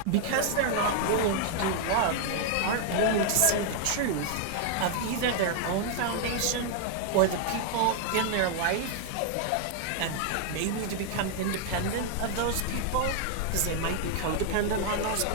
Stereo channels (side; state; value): both; different; correlation 0.00